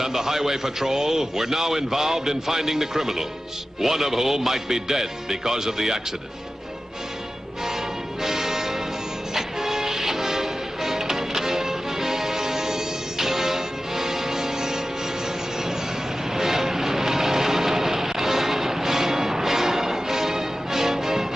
and the Highway Patrol were now involved in finding the criminals, one of whom might be dead because of the accident.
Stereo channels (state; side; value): normal; both; correlation 0.95